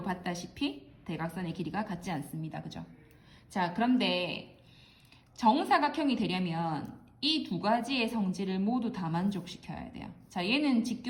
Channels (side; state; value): both; identical; correlation 1.00